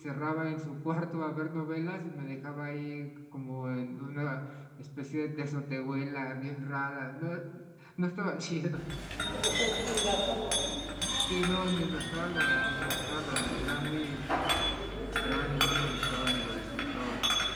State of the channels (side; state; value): both; identical; correlation 1.00